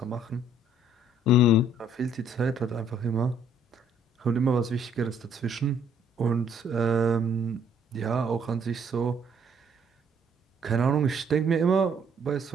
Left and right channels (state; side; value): normal; both; correlation 0.63